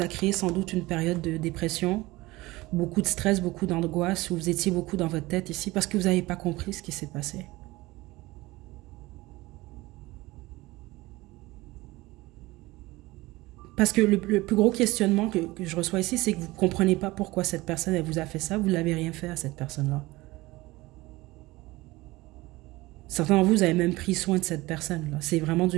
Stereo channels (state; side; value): quieter; left; 20.2 dB